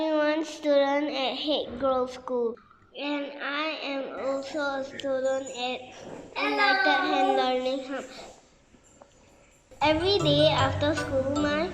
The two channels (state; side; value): identical; both; correlation 1.00